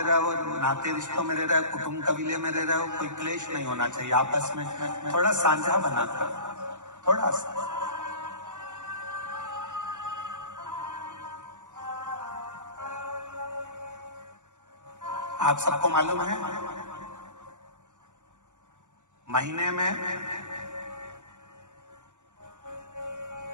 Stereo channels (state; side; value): late; left; 0.85 ms